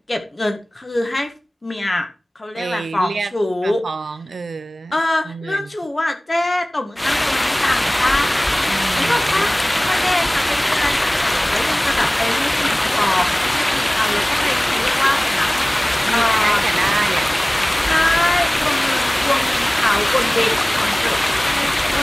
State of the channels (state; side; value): normal; both; correlation 0.98